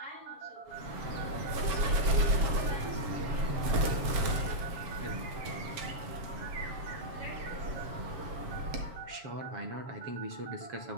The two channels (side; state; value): left; late; 7.2 ms